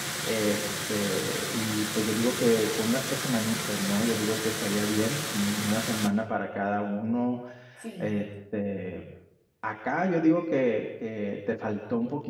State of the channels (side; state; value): both; identical; correlation 1.00